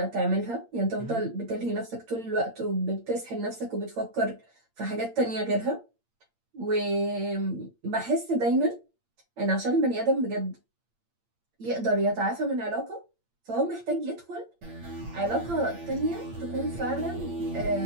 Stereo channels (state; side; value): late; left; 8.7 ms